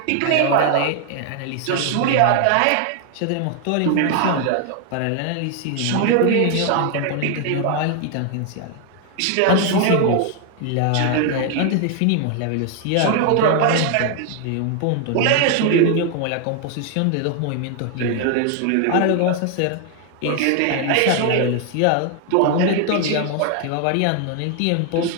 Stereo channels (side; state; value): both; different; correlation 0.00